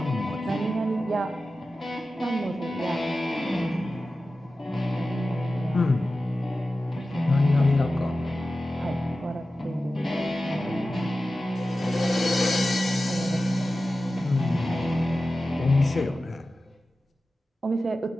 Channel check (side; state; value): both; normal; correlation 0.94